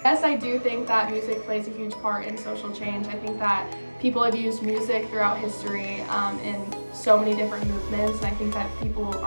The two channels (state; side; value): inverted; both; correlation -1.00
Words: Yes, I do think that music plays a huge part in social change. I think that people have used music throughout history in so many different movements, and I think that people